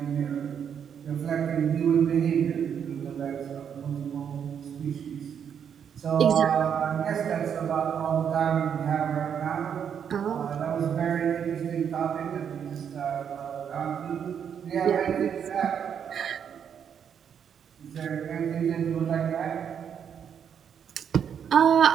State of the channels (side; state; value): left; quieter; 8.0 dB